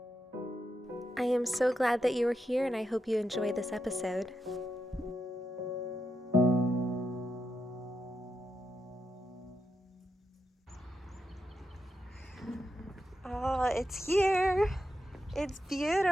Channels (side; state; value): both; normal; correlation 0.85